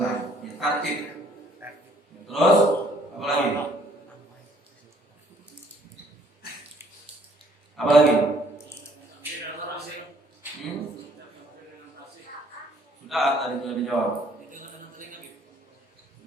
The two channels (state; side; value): normal; both; correlation 0.63